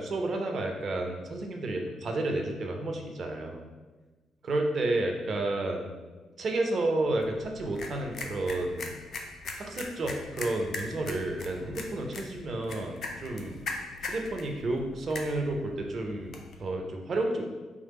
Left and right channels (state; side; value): normal; both; correlation 0.84